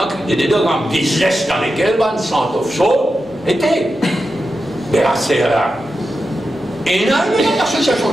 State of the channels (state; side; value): normal; both; correlation 0.90